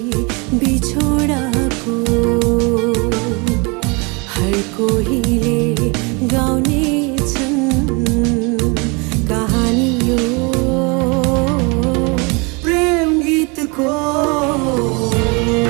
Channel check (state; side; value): quieter; left; 30.0 dB